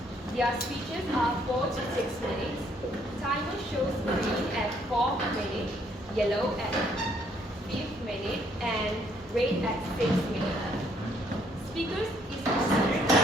Their speeches are 4 to 6 minutes. Timer shows green at 4 minutes, yellow at 5th minute, and red at 6th minute. Speakers is restricted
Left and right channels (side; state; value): both; normal; correlation 0.67